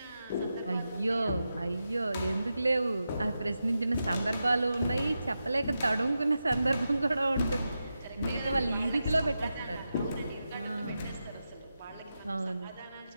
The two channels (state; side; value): inverted; both; correlation -0.90